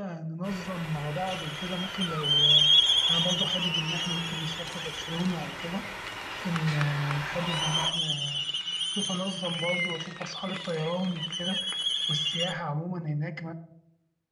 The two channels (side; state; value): both; identical; correlation 1.00